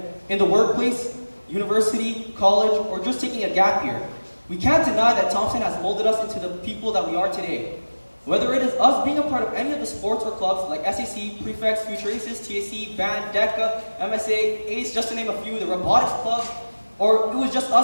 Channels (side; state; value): both; inverted; correlation -1.00